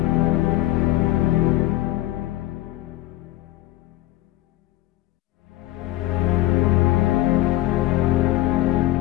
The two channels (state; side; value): quieter; right; 15.9 dB